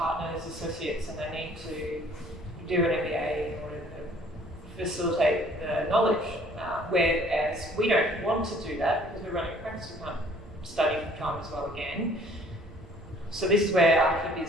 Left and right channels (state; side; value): normal; both; correlation 0.56